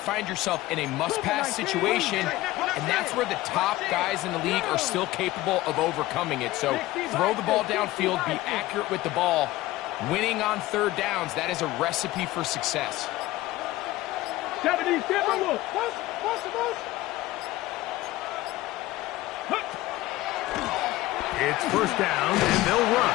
yourself in a must-pass situation, and that's where the top guys in the league are still capable of overcoming it. So throw the ball downfield, be accurate with the ball. Winning on 3rd downs, that is a recipe for success. 70 Timberwolves. It's 1st down, and they'll run.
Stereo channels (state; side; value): quieter; right; 17.4 dB